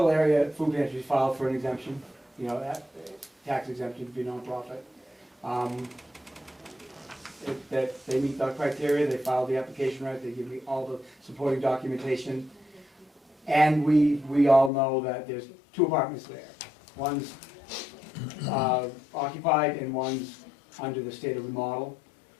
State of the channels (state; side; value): drops out; right; at 14.7 s